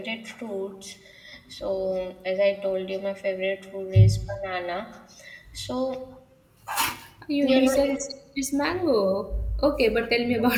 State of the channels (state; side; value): identical; both; correlation 1.00